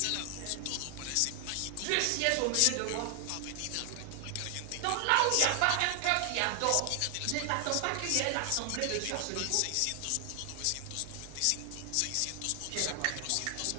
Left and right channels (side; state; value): both; different; correlation 0.00